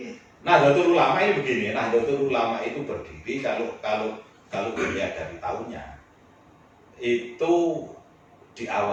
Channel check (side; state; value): both; identical; correlation 1.00